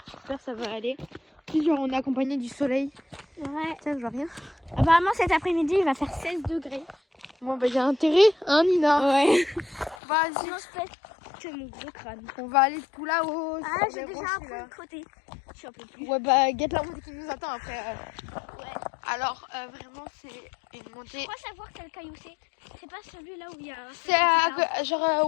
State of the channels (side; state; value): right; drops out; at 10.0 s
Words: J'espère que ça va aller. Puis genre on est accompagné du soleil. Ouais. Tiens, je vois rien. Apparemment cet après-midi il va faire 16 degrés. Bon bah j'ai intérêt, hein Nina. Ouais. Vas-y. Sinon je pète que mon gros crâne. On va aller tout là-haut. Ah sur j'ai les déjà rochers, un peu là. de côté. Je suis un peu plus. Ouais bah guette la montée qui nous attend après. Ouais. Alors vraiment c'est une montée. Je crois savoir quel caillou c'est. C'est pas celui là où il y a. C'est genre